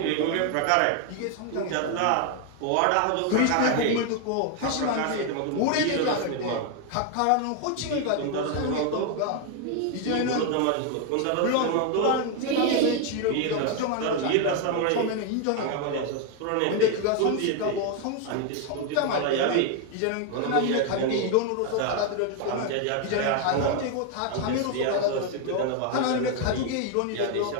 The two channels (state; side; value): different; both; correlation 0.01